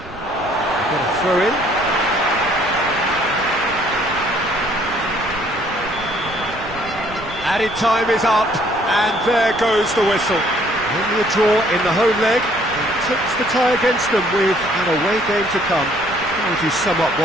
Got a throw in. Added time is up, and there goes the whistle. Only a draw in the home leg, and clips the tie against them with an away game to come. How would you sum up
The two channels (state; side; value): noise; right; rumble, 17 dB below the sound